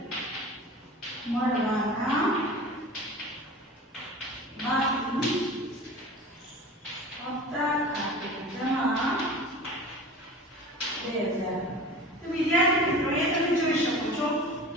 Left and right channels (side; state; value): both; normal; correlation 0.37